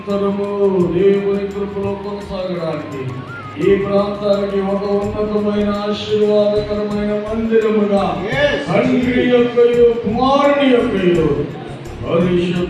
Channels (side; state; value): both; identical; correlation 1.00